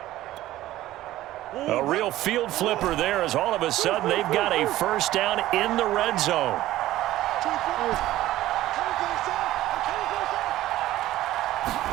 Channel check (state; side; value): quieter; left; 15.0 dB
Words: A real field flipper there as all of a sudden they've got a first down in the red zone.